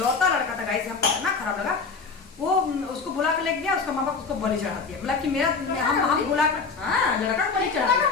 लड़का था गाइस, हमको इतना खराब लगा। वो उसको बुला कर ले गया, उसका माँ बाप उसको बलि चढ़ा दिया, बोला कि मेरा हम बुला कर हाँ लड़का को बलि चढ़ा दिया,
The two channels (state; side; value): quieter; right; 4.7 dB